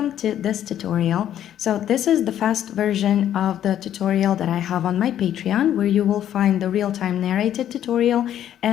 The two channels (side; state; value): right; quieter; 10.9 dB